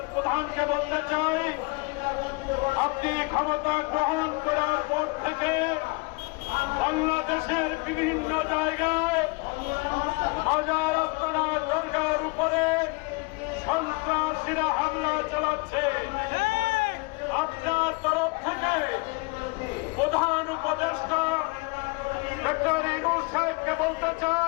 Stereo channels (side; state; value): right; quieter; 28.8 dB